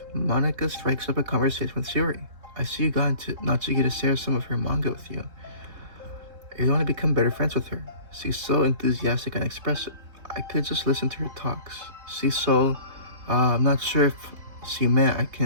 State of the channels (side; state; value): left; late; 3.7 ms